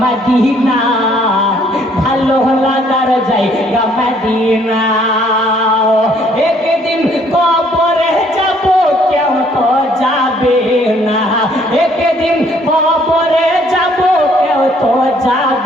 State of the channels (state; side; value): normal; both; correlation 0.63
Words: মদিনা, ভালো লাগার জায়গা মদিনা। একদিন কবরে যাব কেউ তো যাবে না, একদিন কবরে যাব কেউ তো